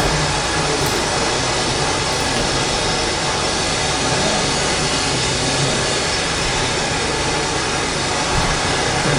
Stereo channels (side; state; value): both; identical; correlation 1.00